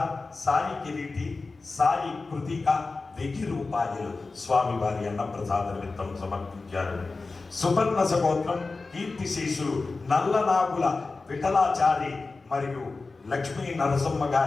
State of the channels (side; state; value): right; quieter; 3.8 dB